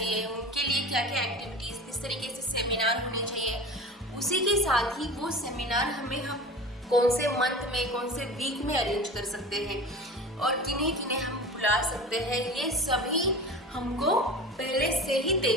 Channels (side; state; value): both; normal; correlation 0.35